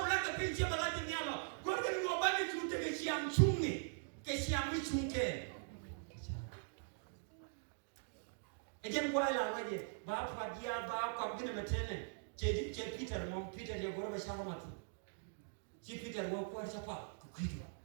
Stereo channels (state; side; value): silent; left; digital silence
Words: lagi pinjam lagi ni Allah. Gua kan gua bagi cuti ke siang cungi, ke siang ni cungke. Ejen gua lah lagi. Bapa dia bapa gini macam ni. Jadi Peter dia gua bersama mati. Si Peter gua kuat siapa? Kukidu.